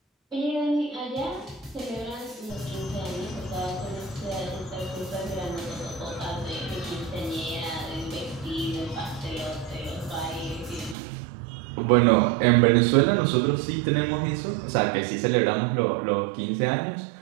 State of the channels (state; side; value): drops out; left; at 11.0 s